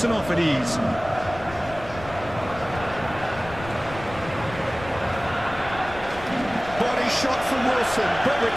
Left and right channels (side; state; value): left; noise; rumble, 14 dB below the sound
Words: off at ease. Body shot from Wilson, but